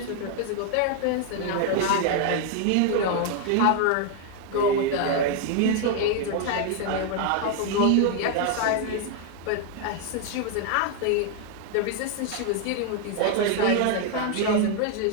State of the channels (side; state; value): both; different; correlation 0.00